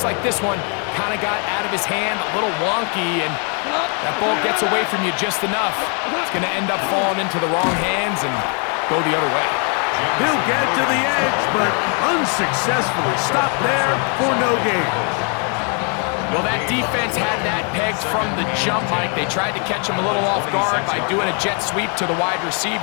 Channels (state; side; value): quieter; right; 38.4 dB